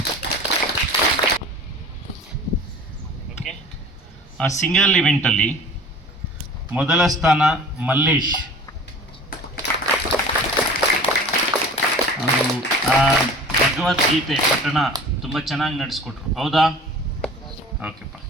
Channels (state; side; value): normal; both; correlation 0.42